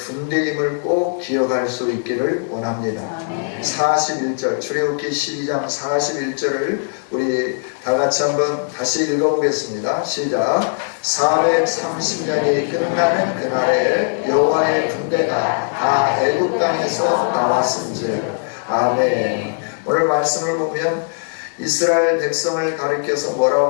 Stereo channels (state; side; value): silent; right; digital silence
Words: 꼭 기억할 수 있기를 원합니다. 41절 출애굽기 12장 41절을 우리 다같이 한번 다시 읽어보겠습니다. 시작. 430년이 끝나는 그날에 여호와의 군대가 다 애굽 땅에서 나왔은즉. 아멘. 오늘 말씀을 보면 이스라엘 백성을 가리켜서